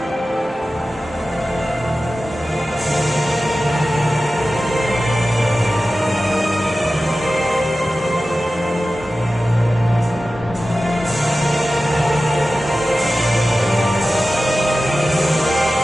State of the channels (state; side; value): normal; both; correlation 0.95